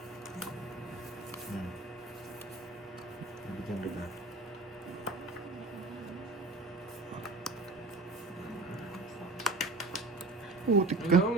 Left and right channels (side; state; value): left; quieter; 3.2 dB